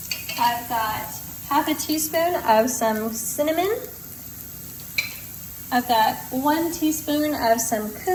I've got half a teaspoon of some cinnamon. I've got 1 teaspoon of some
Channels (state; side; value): identical; both; correlation 1.00